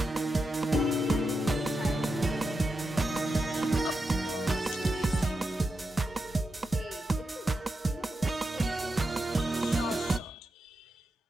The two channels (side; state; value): both; normal; correlation 0.87